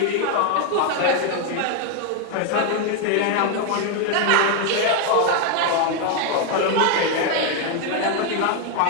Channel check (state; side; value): different; both; correlation 0.01